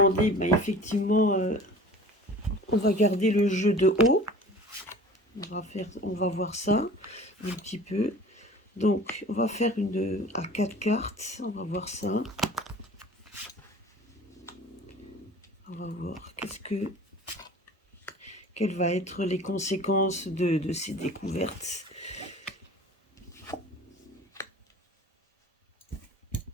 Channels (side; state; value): both; normal; correlation 0.42